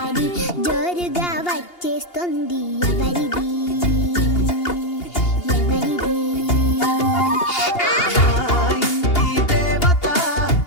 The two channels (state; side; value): late; right; 2.8 ms